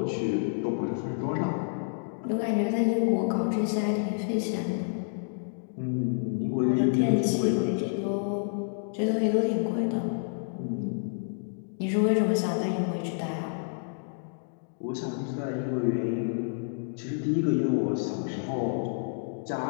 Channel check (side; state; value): right; silent; digital silence